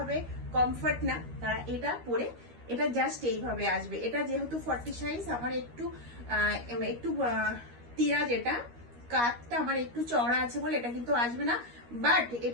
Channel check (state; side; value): late; left; 13 ms